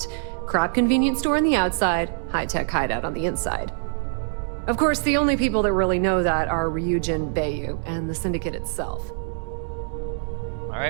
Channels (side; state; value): left; silent; digital silence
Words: Crap convenience store on the outside, high-tech hideout on the inside. Of course, the only people that really know that are Ryujin, Bayu, and the Syndicate itself.